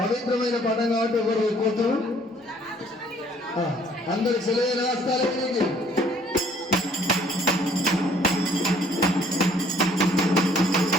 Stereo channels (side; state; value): both; normal; correlation 0.60